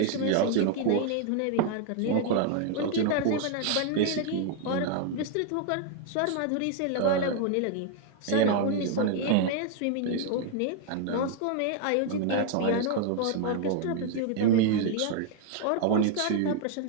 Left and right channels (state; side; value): different; both; correlation 0.00